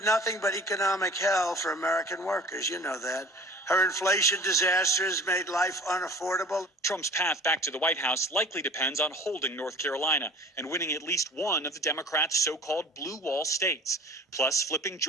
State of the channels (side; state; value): both; normal; correlation 0.44